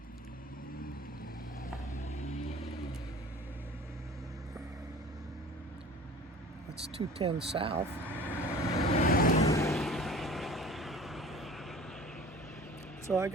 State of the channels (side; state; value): both; normal; correlation 0.43